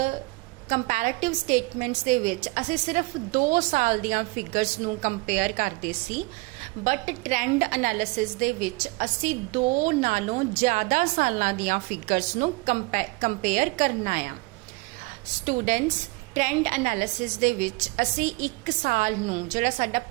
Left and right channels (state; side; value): quieter; left; 25.2 dB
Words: कंपैरेटिव स्टेटमेंट्स दे विच असी सिर्फ 2 साल दियां फिगर्स नूं कंपेयर करते सी, बट ट्रेंड एनालिसिस दे विच असी 2 नालों ज़्यादा सालां दियां फिगर्स नूं कंपेयर करना आ। स्टूडेंट्स, ट्रेंड एनालिसिस दे विच असी 1 साल नूं जिहड़ा साडा